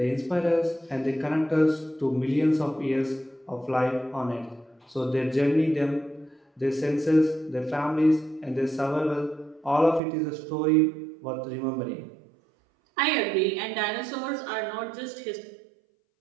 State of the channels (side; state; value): left; drops out; at 10.0 s